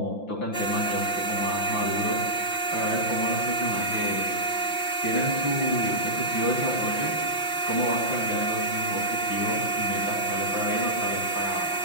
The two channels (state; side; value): late; right; 5.9 ms